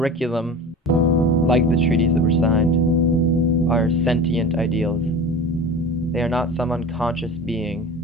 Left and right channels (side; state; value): both; normal; correlation 0.34